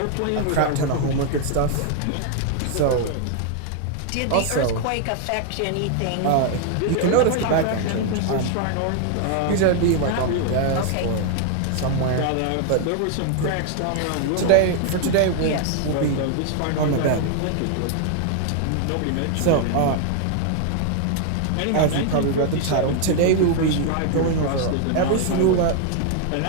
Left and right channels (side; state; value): both; different; correlation 0.00